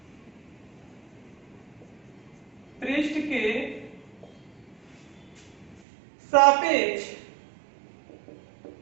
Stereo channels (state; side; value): drops out; left; at 5.8 s